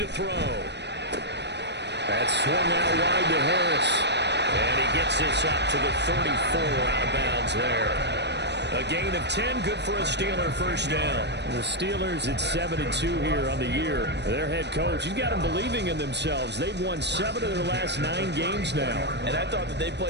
throw. That swung out wide to Harris. And he gets this up to the 34, out of bounds there. A gain of 10, good for a Steeler first down. The Steelers at 7-2 here on the year. Their head coach, he's got them believing in themselves. They've won 7 of their last 9 games now. And I thought that they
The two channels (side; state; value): left; late; 0.50 ms